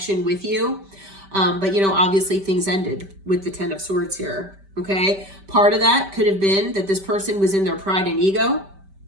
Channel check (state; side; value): late; left; 5.1 ms